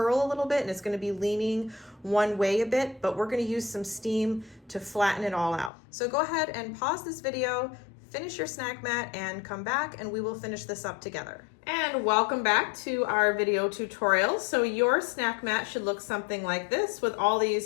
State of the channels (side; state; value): right; drops out; at 5.7 s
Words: a little bit, and it's gonna be leaning one way a bit, but we're gonna use some steam to flatten it all out. So go ahead and pause this video, finish your snack mat, and come back and we will finish this up together. And welcome back to our video tutorial. So your snack mat should look something like this, with all